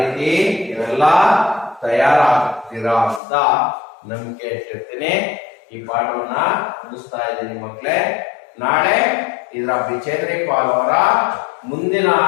ಇವೆಲ್ಲ ತಯಾರಾಗ್ತೀರಾ ಅಂತ ನಂಬಿಕೆ ಇಟ್ಟಿರ್ತೀನಿ. ಈ ಪಾಠವನ್ನ ಮುಗಿಸ್ತಾ ಇದ್ದೀನಿ ಮಕ್ಕಳೇ. ನಾಳೆ ಇದರ ಬಿಚೇಂದ್ರಿ ಪಾಲ್ ಅವರ ಮುಂದಿನ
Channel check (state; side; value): drops out; right; at 3.2 s